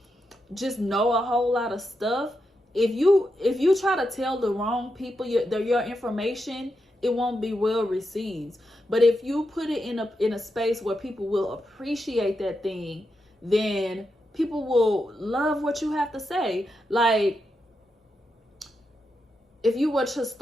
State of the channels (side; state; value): both; normal; correlation 0.85